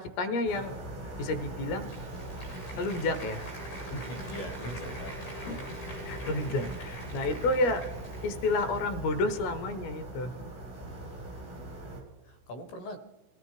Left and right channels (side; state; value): right; late; 16 ms